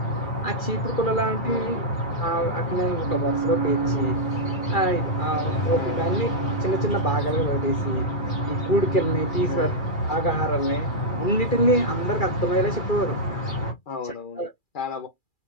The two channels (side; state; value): right; late; 2.4 ms